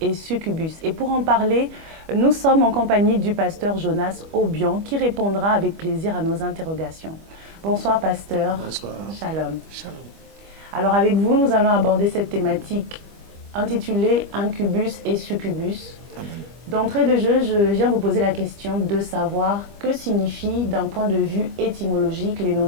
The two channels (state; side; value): late; left; 25 ms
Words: Succubus. Et pour en parler, nous sommes en compagnie du pasteur Jonas Obian qui répondra avec plaisir à nos interrogations. Bonsoir pasteur. Bonsoir. Shalom. Shalom. Alors avec vous, nous allons aborder cette thématique intitulée Incubus et Succubus. Amen. D'entrée de jeu, je viens vous poser la question de savoir que signifient d'un point de vue étymologique les